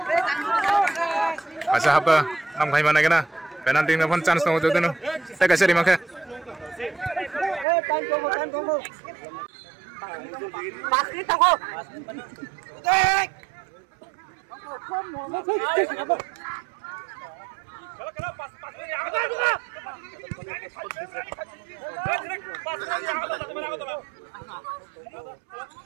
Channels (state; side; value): drops out; left; at 7.7 s